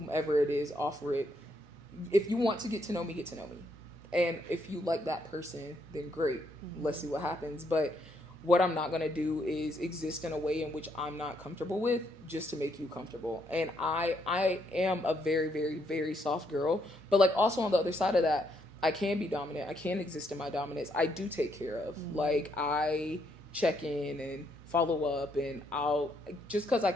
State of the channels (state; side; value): normal; both; correlation 0.74